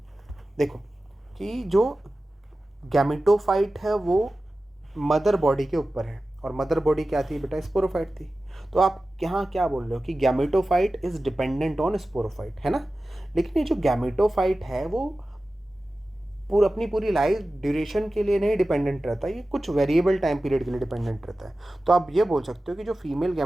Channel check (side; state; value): both; normal; correlation 0.95